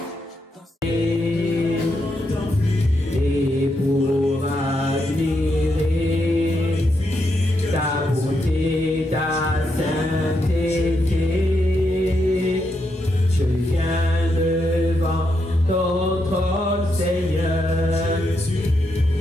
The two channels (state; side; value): normal; both; correlation 0.81